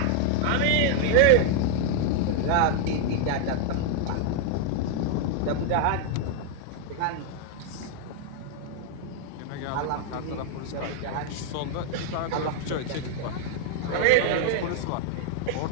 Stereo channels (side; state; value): both; different; correlation 0.00